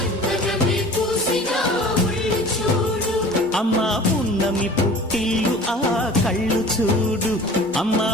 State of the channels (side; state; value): both; normal; correlation 0.43